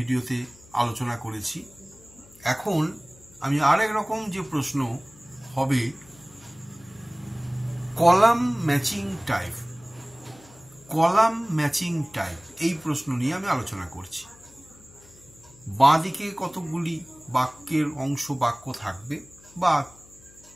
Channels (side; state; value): left; noise; hum, 25 dB below the sound